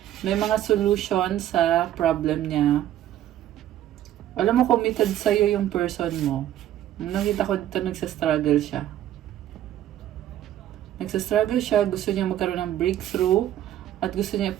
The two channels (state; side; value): quieter; left; 12.1 dB